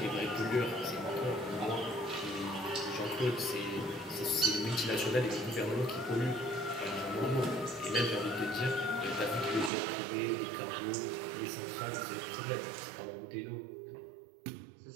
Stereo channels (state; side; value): drops out; left; at 9.7 s